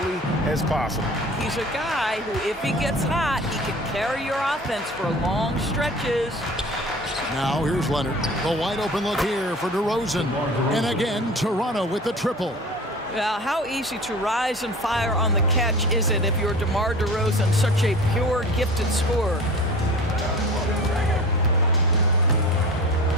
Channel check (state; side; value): normal; both; correlation 0.39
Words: as possible. He's a guy who, if he gets hot, he can carry your offense for long stretches. Now here's Leonard. The wide open look here for DeRozan. And again, Toronto with the triple. Well, how easy to rise and fire on the catch is it if you're DeMar DeRozan, such a pure, gifted scorer?